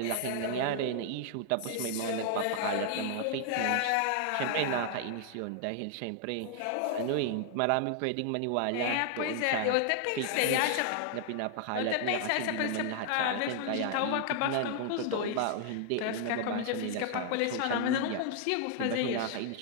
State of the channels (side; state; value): both; different; correlation 0.00